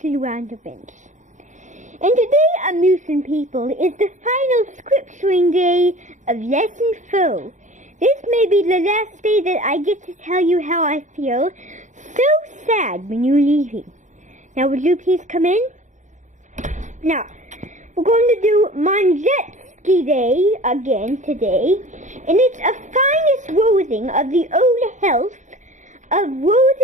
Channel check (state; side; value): late; left; 0.35 ms